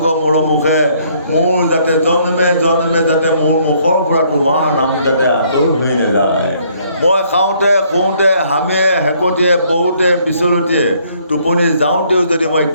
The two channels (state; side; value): inverted; both; correlation -0.65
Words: মোৰ মুখে, মোৰ যাতে জন্মে জন্মে যাতে মোৰ মুখৰ পৰা তোমাৰ নাম যাতে আঁতৰ হৈ নাযায়। মই খাওঁতে শুওঁতে হামিয়ে হেকটিয়ে পৰোঁতে পিছলতিয়ে টোপনি যাওঁতেও যদি মই